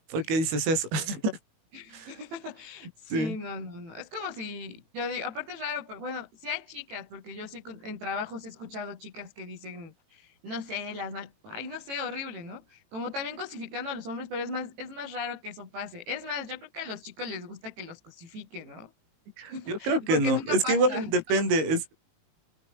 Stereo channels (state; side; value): late; left; 19 ms